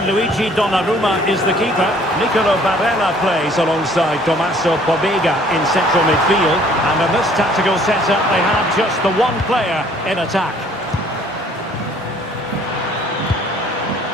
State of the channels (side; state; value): both; normal; correlation 0.57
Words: Donnarumma is the keeper. Nicolo Barella plays alongside Tommaso Pobega in central midfield. And in this tactical setup, they have just the one player in attack.